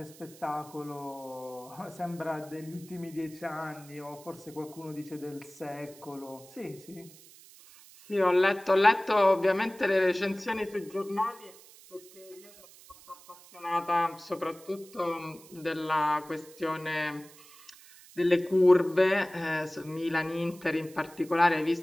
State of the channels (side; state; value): right; noise; hiss, 22 dB below the sound